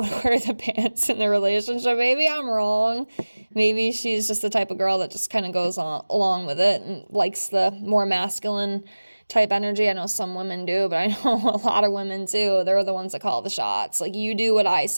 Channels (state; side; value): inverted; both; correlation -1.00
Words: wear the pants in the relationship. Maybe I'm wrong. Maybe she's just the type of girl that just kind of goes along with it and likes the more masculine type energy. I know some women do, but I know a lot of women too. They're the ones that call the shots. Like, you do what I